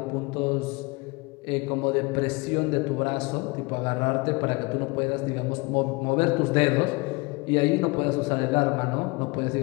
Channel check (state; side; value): quieter; right; 26.3 dB